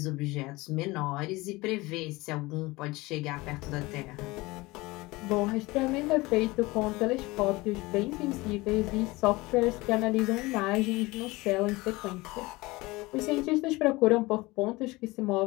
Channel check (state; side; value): quieter; right; 21.7 dB